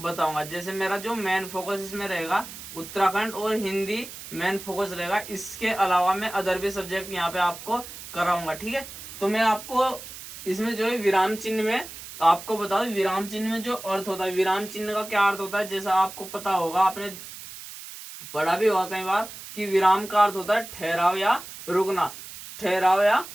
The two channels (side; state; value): right; noise; hiss, 13 dB below the sound